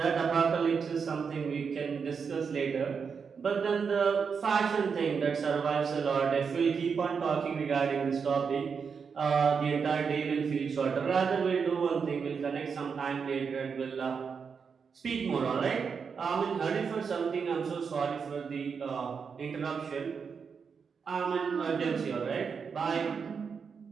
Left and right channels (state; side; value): quieter; left; 6.0 dB